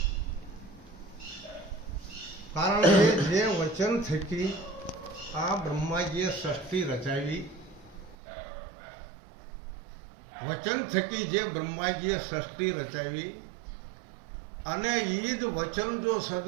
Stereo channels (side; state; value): left; drops out; at 8.2 s